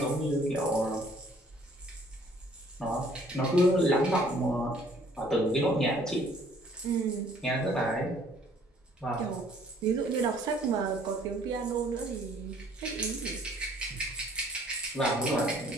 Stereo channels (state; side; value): normal; both; correlation 0.59